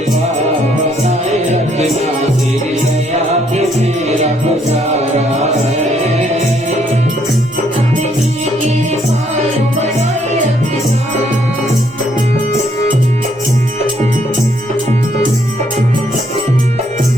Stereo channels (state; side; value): normal; both; correlation 0.69